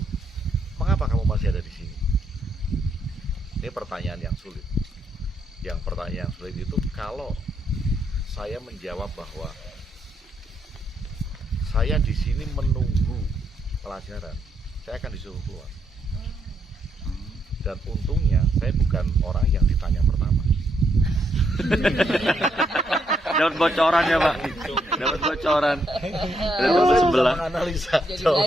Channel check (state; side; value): normal; both; correlation 0.77